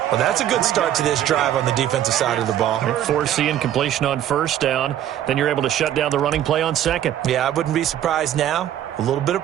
Well, that's a good start to this drive on the defensive side of the ball. Force the incompletion on first down. Then you're able to shut down the running play on second. Yeah, I wouldn't be surprised now. A little bit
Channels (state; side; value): quieter; left; 11.4 dB